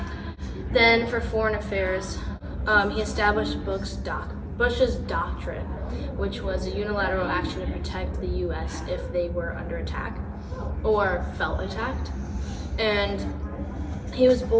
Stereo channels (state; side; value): identical; both; correlation 1.00